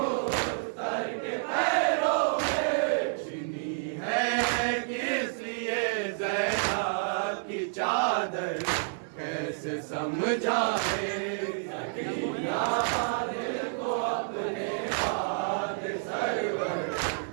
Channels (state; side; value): silent; left; digital silence